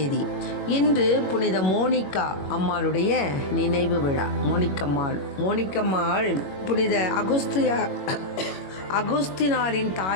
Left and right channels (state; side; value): late; right; 21 ms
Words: இன்று புனித மோனிகா அம்மாளுடைய நினைவு விழா. மோனிக்கம்மாள் புனித அகுஸ்தினாரின்